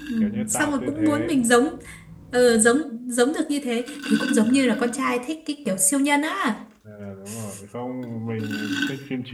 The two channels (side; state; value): both; identical; correlation 1.00